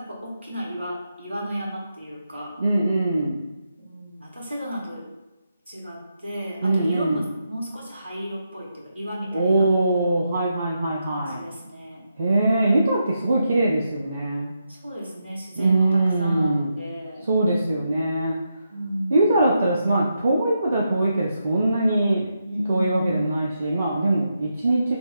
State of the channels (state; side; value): inverted; both; correlation -0.84